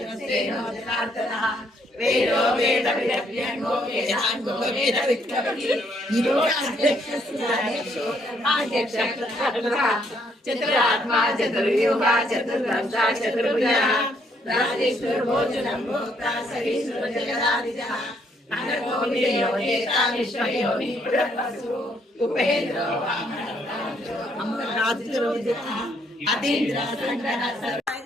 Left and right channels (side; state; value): both; normal; correlation 0.70